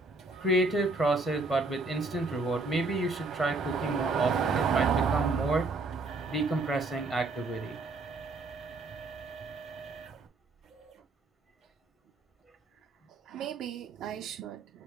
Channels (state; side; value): quieter; left; 3.4 dB